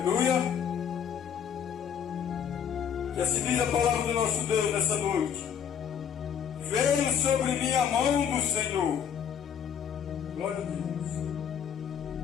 E assim diz a palavra do nosso Deus nessa noite: veio sobre mim a mão do Senhor. Glória a Deus.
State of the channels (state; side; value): quieter; right; 8.2 dB